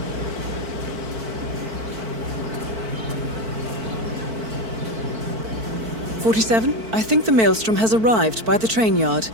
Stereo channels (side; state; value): left; late; 4.5 ms